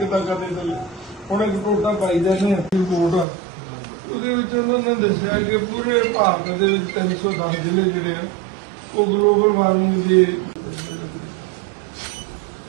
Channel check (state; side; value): drops out; left; at 3.2 s